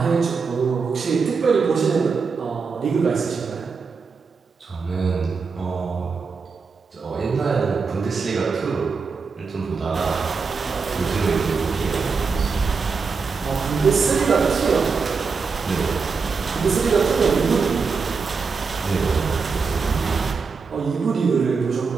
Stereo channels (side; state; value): left; quieter; 5.0 dB